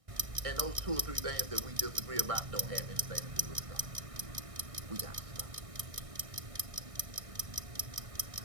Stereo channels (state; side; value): late; left; 1.6 ms